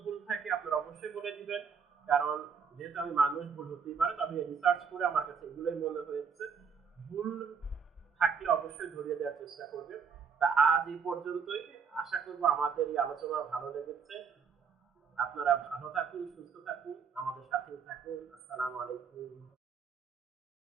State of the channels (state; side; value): quieter; left; 6.3 dB